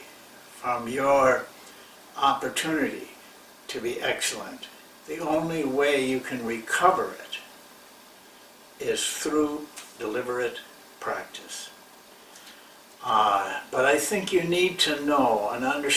from your opportunity to be excellent. The only way you can recover it is through deliberate practice. But I think you need to know and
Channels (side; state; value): both; identical; correlation 1.00